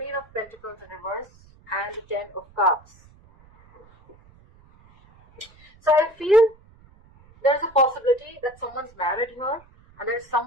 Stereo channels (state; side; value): noise; right; rumble, 27 dB below the sound